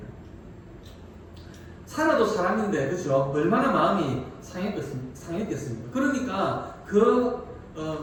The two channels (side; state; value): both; identical; correlation 1.00